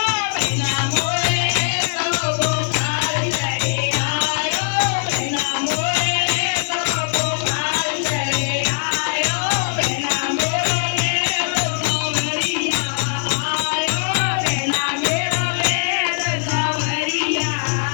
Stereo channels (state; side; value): silent; right; 63 dB below the other